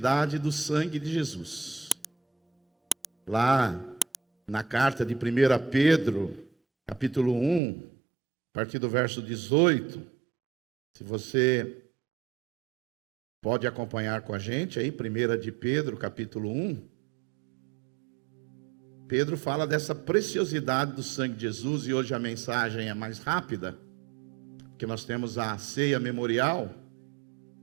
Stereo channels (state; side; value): drops out; left; at 7.6 s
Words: do sangue de Jesus. Lá na carta de 1 Pedro, capítulo 1, a partir do verso 18, se você pode acompanhar com a gente aí, 1 de Pedro, capítulo 1. Pedro fala dessa preciosidade do sangue de Jesus, e hoje a mensagem é mais rápida, porque nós temos a ceia memorial.